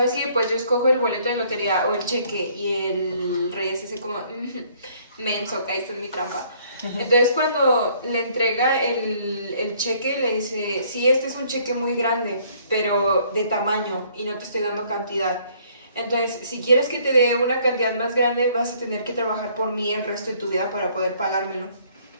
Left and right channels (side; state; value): both; inverted; correlation -0.62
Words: qué? Pues yo escojo el boleto de lotería o el cheque, y el rey es así como, menso, caíste en mi trampa. Entonces cuando le entrega el cheque, le dice, sí, este es un cheque muy grande, pero de tamaño, y no te estoy dando cantidad. Entonces, si quieres que te dé una cantidad más grande, vas a tener que trabajar por mí el resto de tu vida para poder pagármelo.